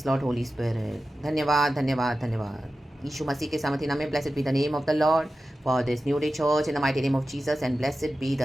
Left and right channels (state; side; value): normal; both; correlation 0.93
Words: Lord Holy Spirit. धन्यवाद धन्यवाद धन्यवाद यीशु मसीह के सामर्थ्य नाम में blessed be the name of the Lord for this new day church in the mighty name of Jesus and blessed be